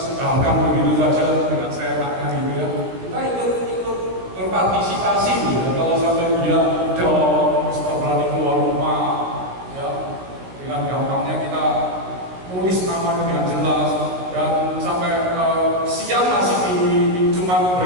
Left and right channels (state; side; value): late; left; 17 ms